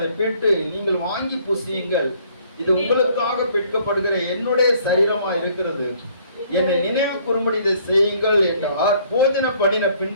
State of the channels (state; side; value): inverted; both; correlation -0.61